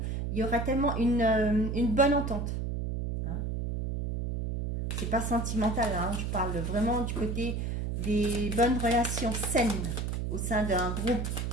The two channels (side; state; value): right; noise; hum, 2 dB below the sound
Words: il y aura tellement une bonne entente. Hein. C'est pas sentimental, hein, je parle vraiment du côté des bonnes relations saines au sein d'un groupe.